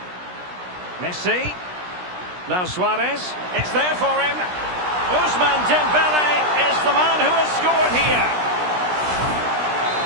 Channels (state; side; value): late; left; 16 ms